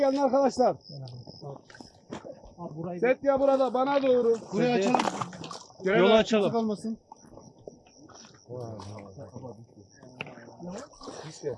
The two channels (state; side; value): identical; both; correlation 1.00